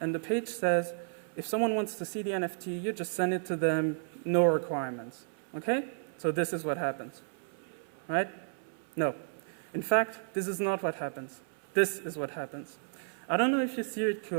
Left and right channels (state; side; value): silent; left; 55 dB below the other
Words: the page says, if someone wants to see the NFT, you just send it to them, no requirements, okay? So this is what happens, right? No. In fact, this is not what happens. This is what happens. I don't know if you see it